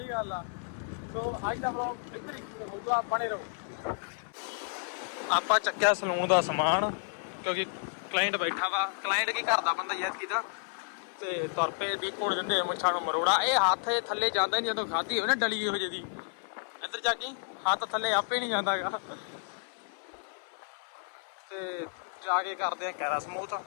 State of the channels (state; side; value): silent; right; 56 dB below the other